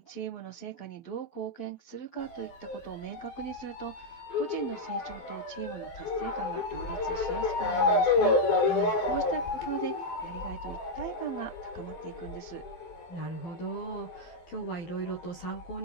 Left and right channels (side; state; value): right; late; 12 ms